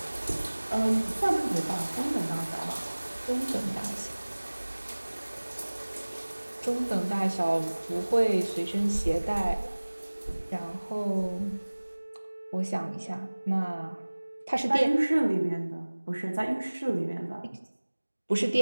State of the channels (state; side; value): inverted; both; correlation -1.00